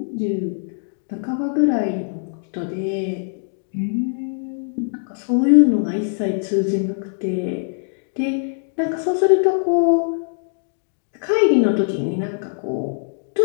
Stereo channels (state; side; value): silent; right; digital silence